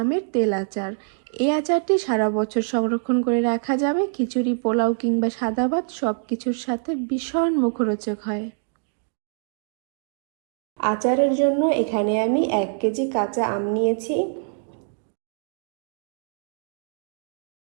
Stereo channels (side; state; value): left; silent; digital silence